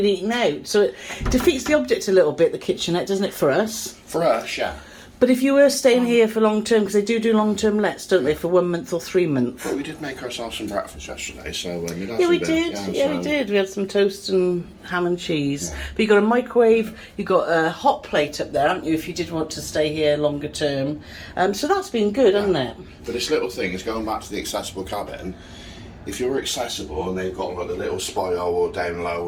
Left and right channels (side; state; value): both; identical; correlation 1.00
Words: eating out. So it defeats the object a little bit, the kitchenette, doesn't it, for us? For us, yeah. But if you were staying here for long term, because they do long term lets, don't they, for 1 month or 3 months? Well, we did make ourselves some breakfast yesterday, so we did. We had some toast and ham and cheese. Yeah. But you got a microwave, you got a hot plate up there, haven't you? If you did want to stay here longer term, so that's been good, hasn't it? But this little thing is going back to the accessible cabin. If you're accessible and they've got like the little spiral down